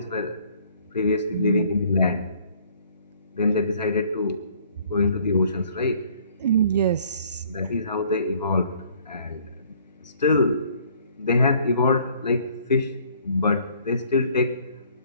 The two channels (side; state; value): both; inverted; correlation -0.59